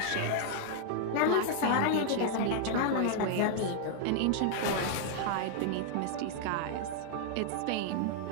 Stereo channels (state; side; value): different; both; correlation 0.00